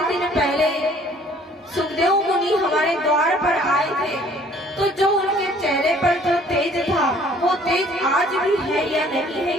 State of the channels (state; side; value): normal; both; correlation 0.57